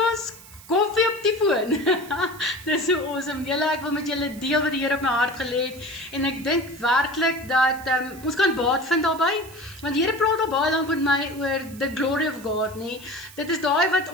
koffie op die foon. Dis so awesome. Julle, ek wil met julle deel wat die Here op my hart gelê het, en ek dink werklik dat ons kan baat vind daarbey, want die Here praat al baie lank met my oor the glory of God, nee. Dit is daai wat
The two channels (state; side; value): noise; right; hiss, 20 dB below the sound